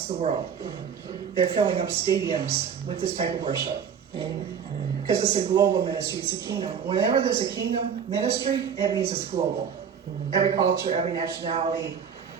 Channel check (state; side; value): quieter; left; 7.4 dB